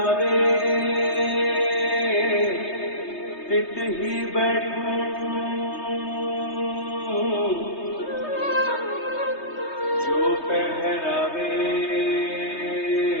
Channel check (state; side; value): late; right; 3.3 ms